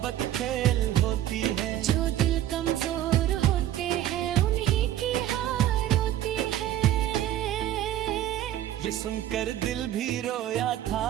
खेल होती है, जो दिल कमजोर होते हैं उन्हीं की हार होती है। ये सुनकर दिल भी रोया था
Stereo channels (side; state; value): left; quieter; 12.4 dB